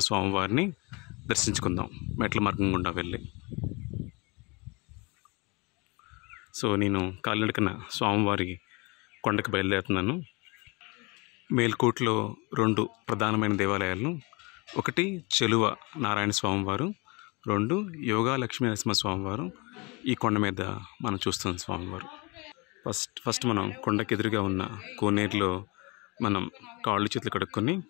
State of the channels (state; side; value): quieter; right; 27.9 dB